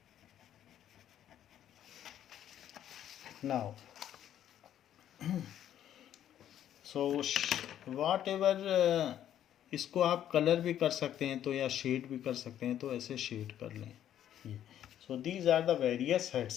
Now so whatever इसको आप कलर भी कर सकते हैं तो, या शेड भी कर सकते हैं तो, ऐसे शेड कर लें ये। So these are the various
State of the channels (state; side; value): quieter; right; 10.9 dB